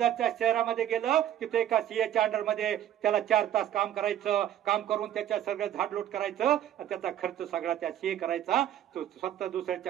शहरामध्ये गेलं. तिथे एका CAच्या अंडरमध्ये त्याला 4 तास काम करायचं. काम करून त्याच्या सगळं झाडलोट करायचं. त्याचा खर्च सगळा त्या CA करायचा. तो स्वतः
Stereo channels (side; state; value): left; quieter; 11.3 dB